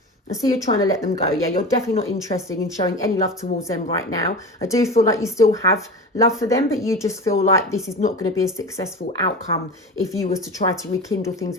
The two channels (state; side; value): normal; both; correlation 0.30